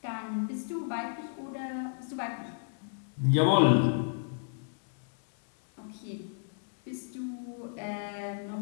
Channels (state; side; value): silent; right; digital silence